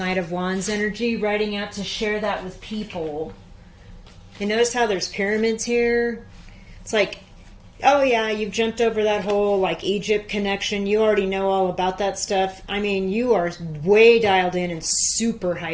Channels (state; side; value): identical; both; correlation 1.00